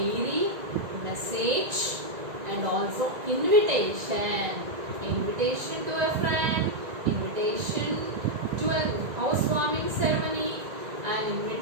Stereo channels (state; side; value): late; left; 1.9 ms